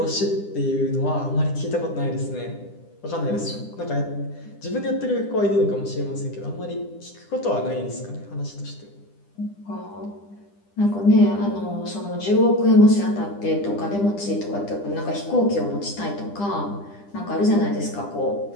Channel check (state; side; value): late; right; 10 ms